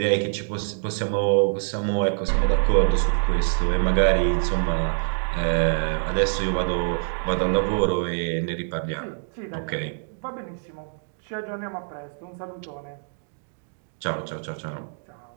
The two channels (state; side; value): silent; left; digital silence